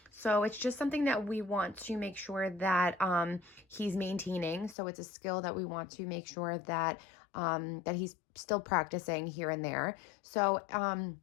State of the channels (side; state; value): right; drops out; at 4.8 s